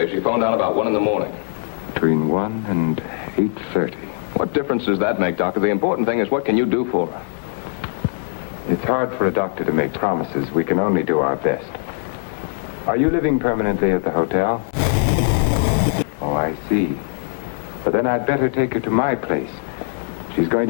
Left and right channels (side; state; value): right; silent; digital silence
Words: she phoned out about 1 in the morning. Between 1 and 8:30. What difference does that make, Doctor? The important thing is, what can you do for her? It's hard for a doctor to make promises. We can only do our best. Are you living permanently at the hotel? Oh, I see. But then I'd better take her to my place. She's going